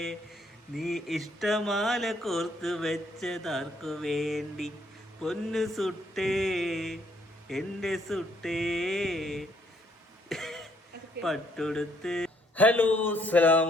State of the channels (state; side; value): normal; both; correlation 0.69